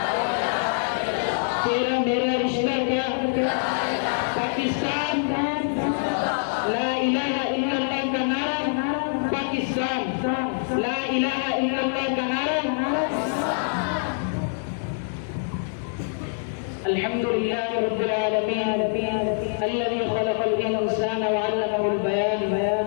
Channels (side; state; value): right; silent; digital silence